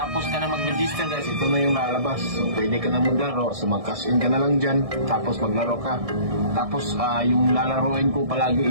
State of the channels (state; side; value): late; left; 1.6 ms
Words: ka na mag-register guys, ito na yung lalabas. So pwede ka na maglaro, so mag-cash in ka na lang dyan, tapos maglaro ka. Tapos yung lalaroin ko